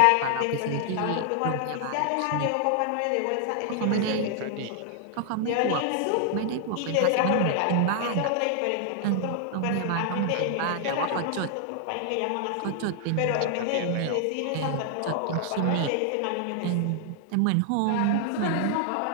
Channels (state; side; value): different; both; correlation 0.00